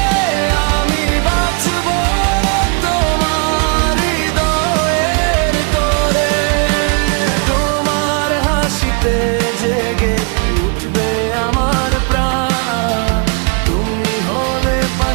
আমি বাঁচব তোমার হৃদয়ের তোরে। তোমার হাসিতে জেগে উঠবে আমার প্রাণ। তুমি হলে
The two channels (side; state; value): left; quieter; 35.4 dB